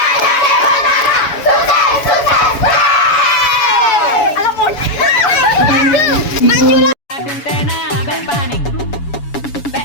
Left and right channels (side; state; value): right; late; 7.1 ms